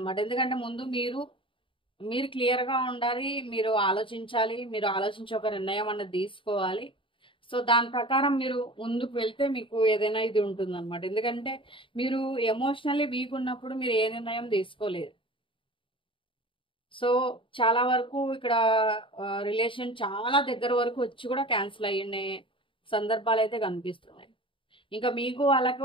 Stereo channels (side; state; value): right; late; 0.25 ms